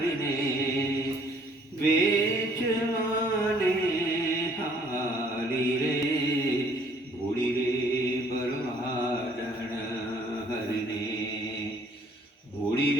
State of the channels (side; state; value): both; normal; correlation 0.60